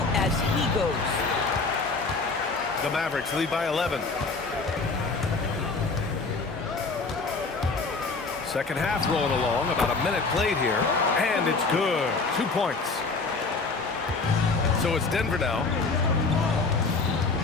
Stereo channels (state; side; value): quieter; right; 4.0 dB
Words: as he goes. The Mavericks lead by 11. Second half rolling along, about a minute played here, and it's good. 2 points. So it's Denver now.